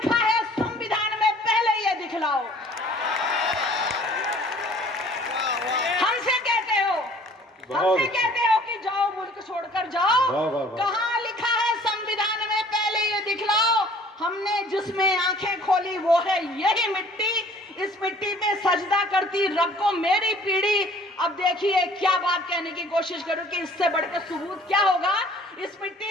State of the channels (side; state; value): both; normal; correlation 0.53